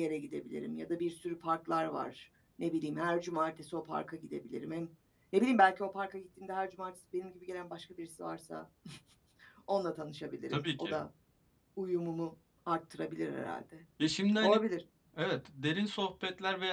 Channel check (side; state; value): both; identical; correlation 1.00